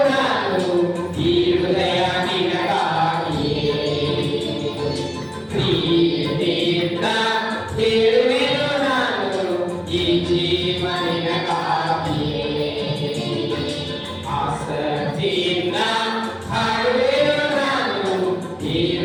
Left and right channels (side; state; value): both; identical; correlation 1.00